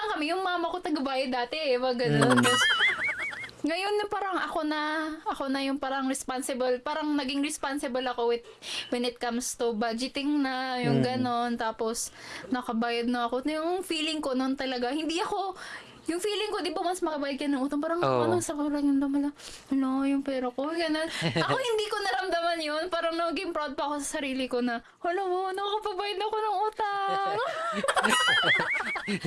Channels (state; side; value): identical; both; correlation 1.00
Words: kami, yung mama ko tagabayad dati eh, wag ganun. Tapos, ngayon na parang ako na yung parang responsible, parang naging responsible ako when it comes to budgeting na, yung ganon. Tapos, nakabayad na ako. Yung feeling ko noon talaga, yung feeling ko, di ba mas makabayad ka ng utang, parang sa parang yung damala, yung pera ko, gano'n. Ako hindi ko naramdaman yun, parang naging proud pa ako sa sarili ko na, nakakapabayad ako ng utang.